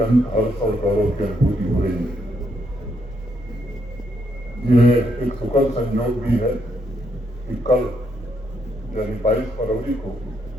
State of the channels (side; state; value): both; normal; correlation 0.76